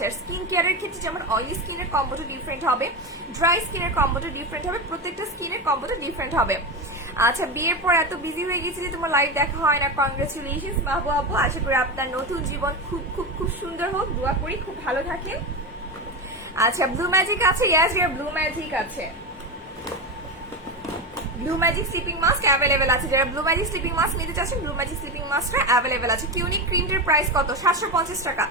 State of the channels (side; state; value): both; normal; correlation 0.17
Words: আর স্কিন কেয়ারের ক্ষেত্রে যেমন অয়েলি স্কিনের কম্বোটা ডিফারেন্ট হবে, ড্রাই স্কিনের কম্বোটা ডিফারেন্ট হবে, প্রত্যেকটা স্কিনের কম্বোটা ডিফারেন্ট হবে। আচ্ছা, বিয়ের পর এত বিজি হয়ে গেছি যে তোমার লাইভ দেখা হয় না, কংগ্রেচুলেশনস মাহবুব আপু। আশা করি আপনার নতুন জীবন খুব খুব খুব সুন্দর হোক, দোয়া করি খুব ভালো থাকেন। আচ্ছা, ব্লু ম্যাজিক আছে? ইয়েস ডিয়ার, ব্লু ম্যাজিক আছে। Blue magic sleeping mask available আছে, যারা ব্লু ম্যাজিক স্লিপিং মাস্ক নিতে চাচ্ছেন ব্লু ম্যাজিক স্লিপিং মাস্কটা অ্যাভেলেবেল আছে। কিউনিক ক্রিমের প্রাইস কত? 750 টাকা।